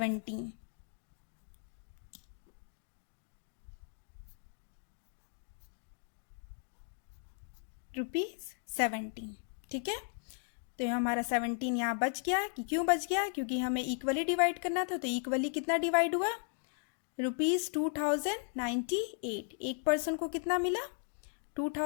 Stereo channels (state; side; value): silent; right; 54 dB below the other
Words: ₹17। ठीक है, तो ये हमारा 17 यहाँ बच गया। कि क्यों बच गया, क्योंकि हमें इक्वली डिवाइड करना था, तो इक्वली कितना डिवाइड हुआ ₹2098। एक पर्सन को कितना मिला?